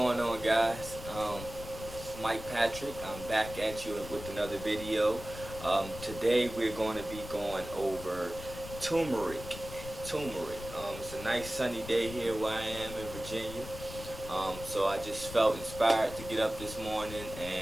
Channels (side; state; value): left; noise; rumble, 12 dB below the sound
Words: on, guys? Mike Patrick. I'm back at you with another video. Today we're going to be going over turmeric. Turmeric. It's a nice sunny day here where I am in Virginia. So I just felt inspired to get up this morning,